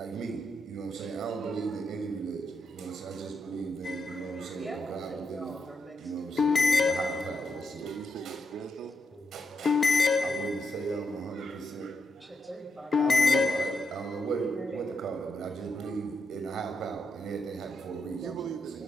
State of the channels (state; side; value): normal; both; correlation 0.82